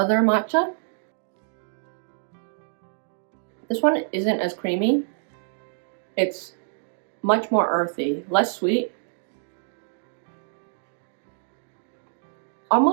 matcha. This one isn't as creamy. It's much more earthy, less sweet.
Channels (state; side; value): silent; left; digital silence